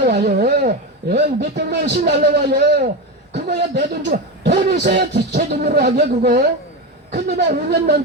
몇백만 원씩 날라와요. 그거야 내 돈 주고 돈 있어야 제 돈으로 하게 그거. 근데 막 5년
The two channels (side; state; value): both; normal; correlation 0.17